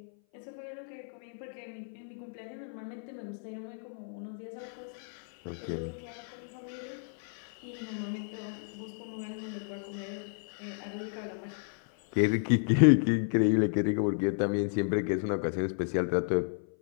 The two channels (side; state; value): right; silent; 56 dB below the other